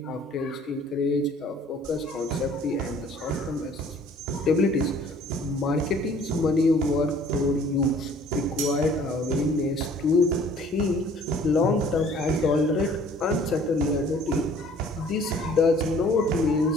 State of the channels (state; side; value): normal; both; correlation 0.54